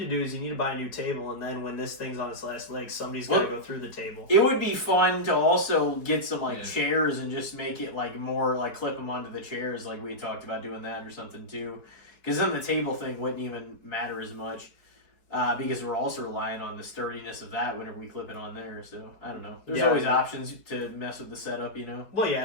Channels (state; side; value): late; right; 4.7 ms